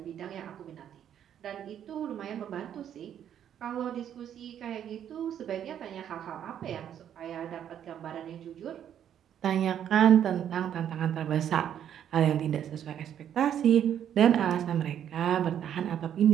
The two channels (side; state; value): left; quieter; 9.7 dB